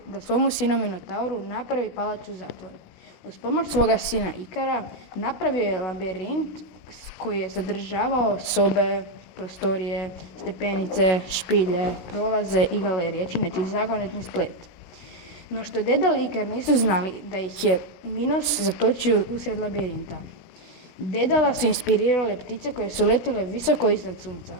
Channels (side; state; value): right; late; 16 ms